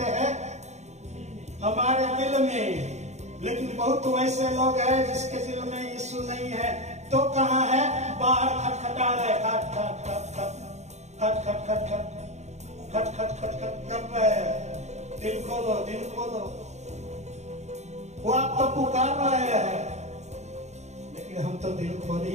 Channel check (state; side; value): late; left; 0.33 ms